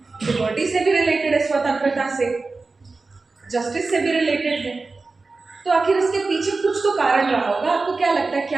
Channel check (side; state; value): left; quieter; 3.8 dB